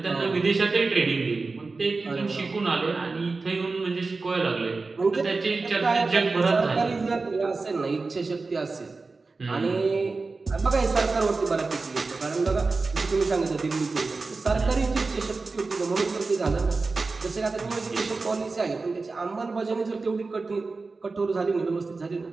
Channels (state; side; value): quieter; left; 3.9 dB